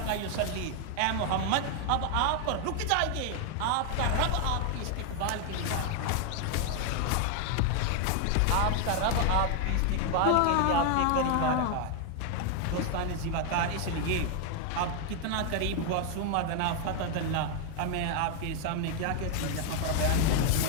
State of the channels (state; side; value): different; both; correlation 0.00